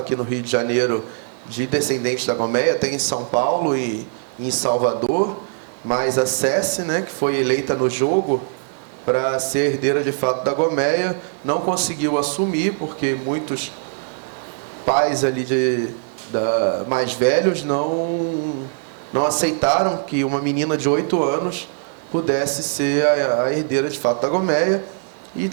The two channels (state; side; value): silent; left; digital silence